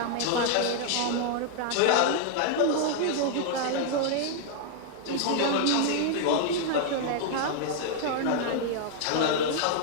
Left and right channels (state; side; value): different; both; correlation -0.01